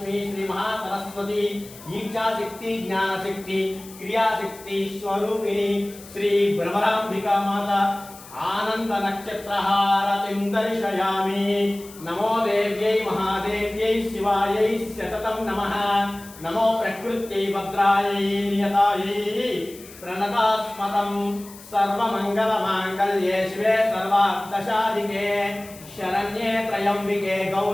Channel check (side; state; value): left; noise; hiss, 19 dB below the sound